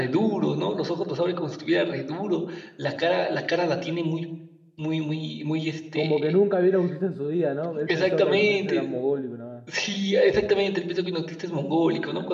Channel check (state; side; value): identical; both; correlation 1.00